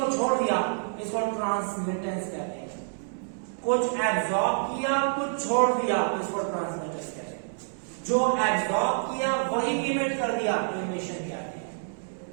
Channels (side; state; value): left; silent; 59 dB below the other